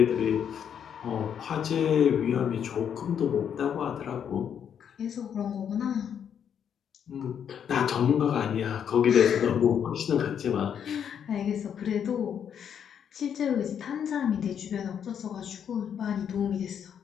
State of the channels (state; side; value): quieter; right; 8.4 dB